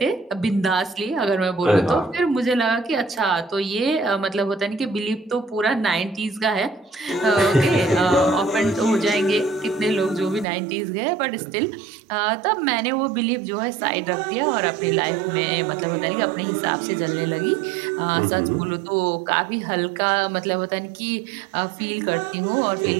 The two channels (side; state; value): left; drops out; at 10.5 s